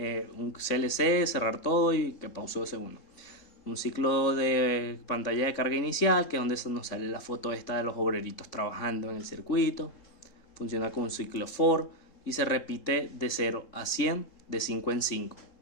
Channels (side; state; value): right; late; 3.7 ms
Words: CLC, cerrar todo y que pause 2 segundos. Un ciclo de pantalla de carga inicial, que es donde nos sale la foto esta de los obreritos trabajando en el circuito. Funciona con un ciclo for y se repite de 0 a 100, de 5 en 5.